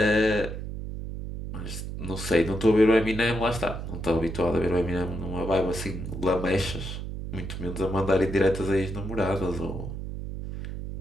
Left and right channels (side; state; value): right; noise; hum, 7 dB below the sound